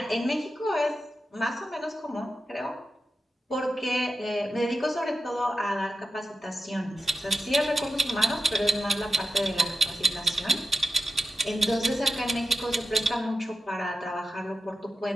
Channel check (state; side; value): normal; both; correlation 0.88